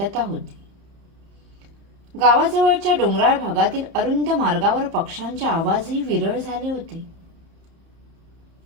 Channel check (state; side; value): late; left; 30 ms